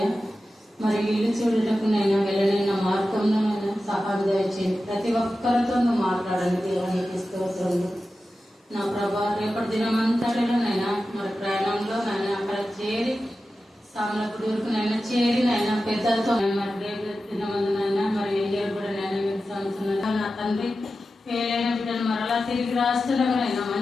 మరి ఇల్లు చూడటకు నైనా వెళ్ళనైనా మార్గంలో నైనా సహాయం దయచేయండి. ప్రతి ఒక్కరితో నువ్వు మాట్లాడండి దేవా. నీకు స్తోత్రంలో నా ప్రభా. రేపటి దినమంతటిలో నైనా మరి ప్రయాణంలో నైనా అక్కడ చేరి సామలపుడూరుకు నైనా చేరి నైనా పెద్దలతో మరి రేపు దినమందునైనా మరి వెళ్ళారు కూడా నైనా మీరు సంవత్సరం నా తండ్రి పేలైన బిడ్డలు మరలా తిరిగి రాష్ట్రంలో నైనా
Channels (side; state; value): both; normal; correlation 0.93